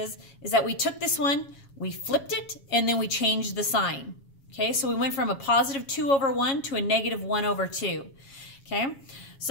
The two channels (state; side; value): late; right; 7.3 ms